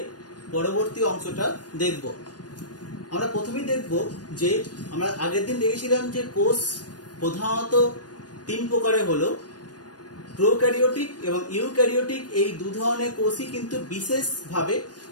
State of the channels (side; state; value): right; late; 0.69 ms